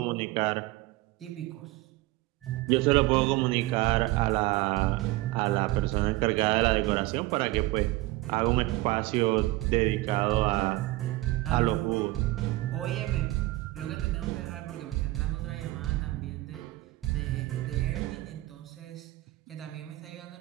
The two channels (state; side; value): quieter; left; 19.0 dB